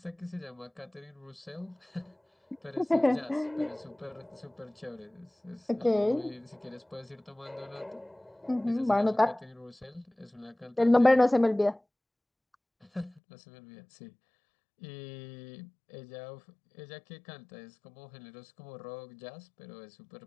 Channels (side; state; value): right; drops out; at 13.2 s